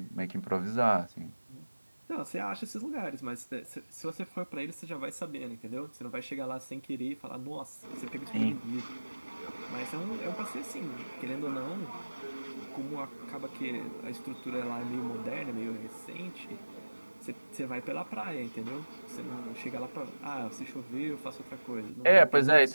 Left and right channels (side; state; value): both; inverted; correlation -1.00